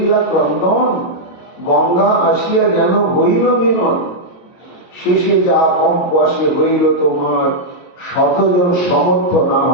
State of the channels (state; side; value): late; right; 23 ms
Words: ক্রন্দন, গঙ্গা আসিয়া যেন হইল মিলন। শেষে যা কম্প আসে হইল তোমার, শতজন সমর্থ না